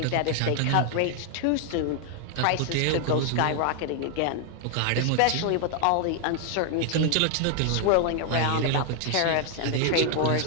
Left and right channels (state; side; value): different; both; correlation 0.00